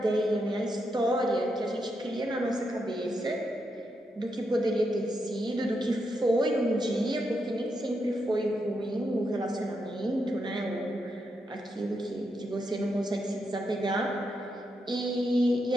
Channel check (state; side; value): normal; both; correlation 0.83